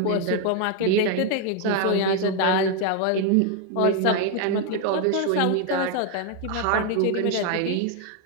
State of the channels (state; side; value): different; both; correlation 0.01